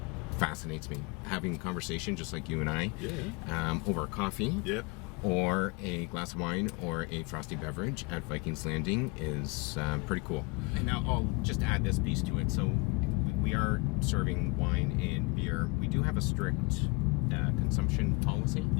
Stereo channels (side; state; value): right; quieter; 27.8 dB